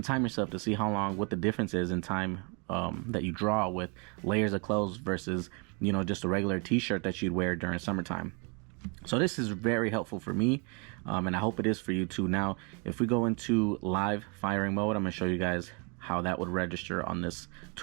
time yourself to see how long, what the difference is in time that you draw with layers of clothes versus, you know, just a regular t-shirt that you'd wear during summertime. So this is very helpful for me, and I hope it is for you too. Now, if we go into live firing mode, I'm going to show you guys how that would register on this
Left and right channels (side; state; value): left; quieter; 33.6 dB